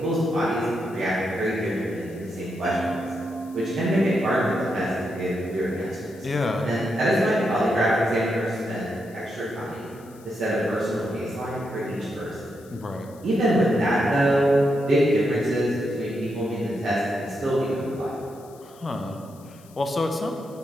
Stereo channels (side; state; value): left; noise; hiss, 26 dB below the sound